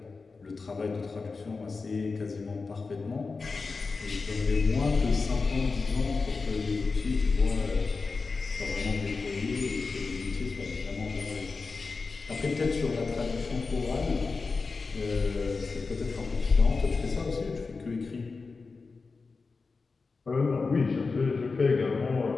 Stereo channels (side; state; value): right; quieter; 4.3 dB